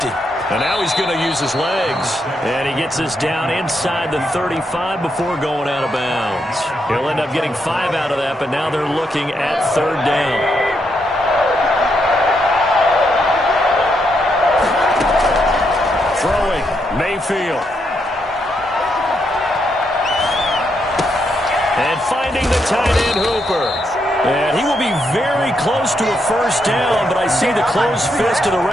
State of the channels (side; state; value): both; normal; correlation 0.79